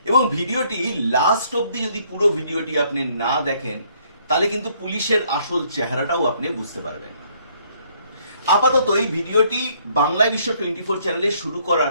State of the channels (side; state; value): both; inverted; correlation -0.65